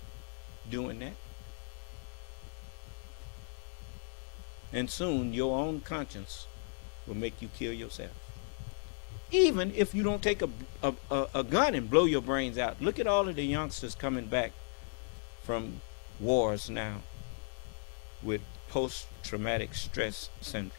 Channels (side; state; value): right; silent; 54 dB below the other